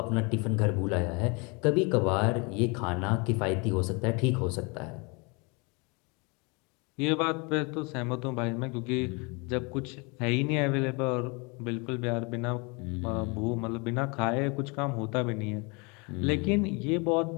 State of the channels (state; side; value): quieter; right; 30.2 dB